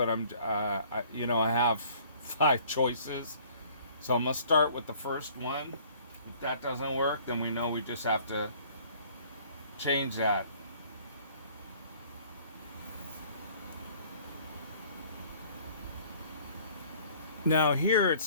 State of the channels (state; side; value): inverted; both; correlation -0.55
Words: I have 5 choices. So I'm gonna start with the first one. If that doesn't work, then we know we just have to change that. Now here